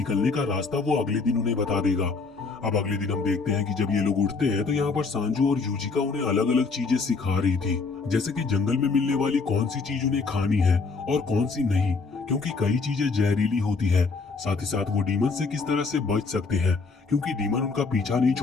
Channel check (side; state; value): right; quieter; 4.4 dB